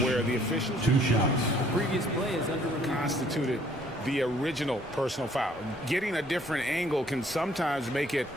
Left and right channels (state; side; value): normal; both; correlation 0.61